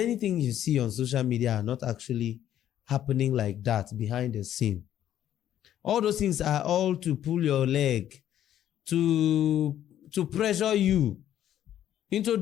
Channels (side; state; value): right; quieter; 11.3 dB